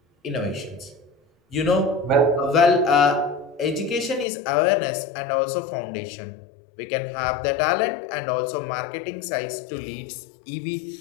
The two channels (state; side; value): drops out; right; at 4.2 s